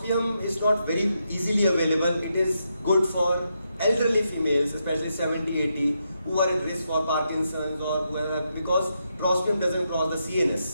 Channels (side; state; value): both; inverted; correlation -0.82